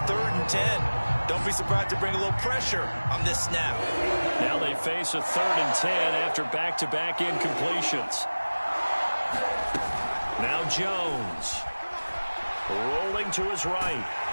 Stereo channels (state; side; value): inverted; both; correlation -1.00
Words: 3rd and 10. Don't be surprised to bring a little pressure on this snap. Now they face a 3rd and 10 after back-to-back incompletions. Now Jones. Rolling to his right.